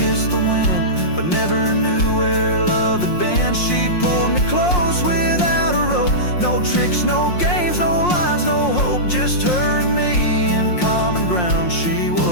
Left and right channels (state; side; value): late; right; 5.6 ms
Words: the wind, but never knew where love had been. She pulled me close without a rope, no tricks, no games, no lines, no hope, just her and me in common ground. She